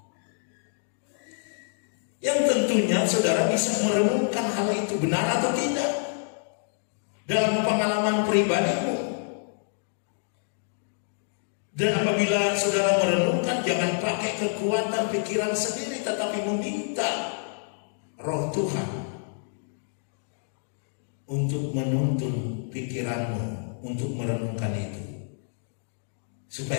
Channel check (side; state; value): right; silent; digital silence